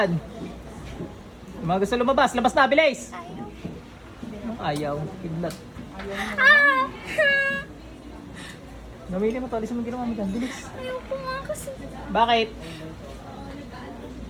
Yung mga gusto lumabas, labas na, bilis! Ayaw, kidlat. Ah! Gamitin mo to, alis mo yung ginawa mo dyan, bilis. Ayoko nga kasi. Bakit?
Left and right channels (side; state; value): both; identical; correlation 1.00